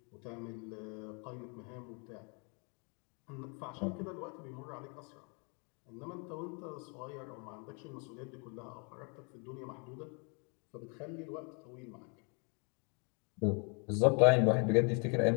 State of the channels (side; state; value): right; quieter; 36.1 dB